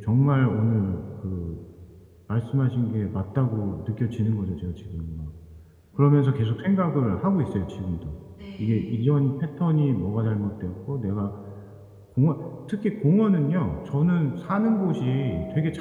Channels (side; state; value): both; identical; correlation 1.00